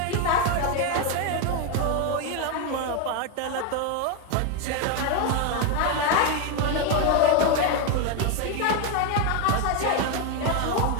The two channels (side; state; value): both; different; correlation 0.01